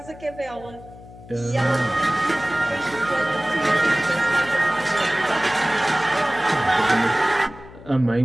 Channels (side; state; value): left; noise; hum, 18 dB below the sound